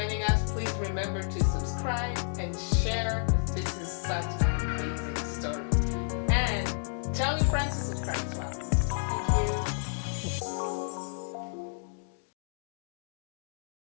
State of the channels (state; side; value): silent; right; digital silence